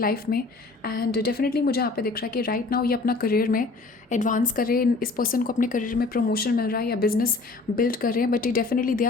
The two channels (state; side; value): quieter; right; 3.8 dB